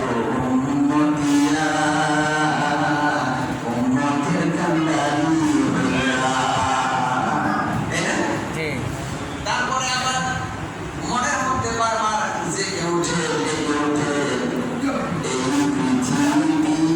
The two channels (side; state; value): both; identical; correlation 1.00